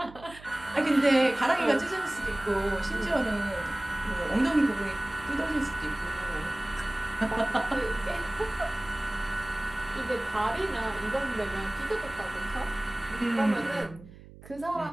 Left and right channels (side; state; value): right; noise; hum, 19 dB below the sound